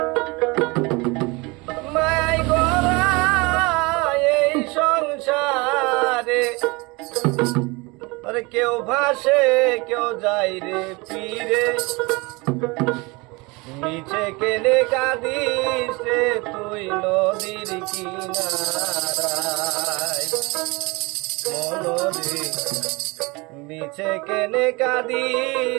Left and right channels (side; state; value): left; quieter; 25.8 dB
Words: মায়াই গড়া এই সংসারে আরে কেউ ভাসে কেউ যায় রে পীরে নিচে কেনে কাঁদিস রে তুই নদীর কিনারায় মনরে নিচে কেনে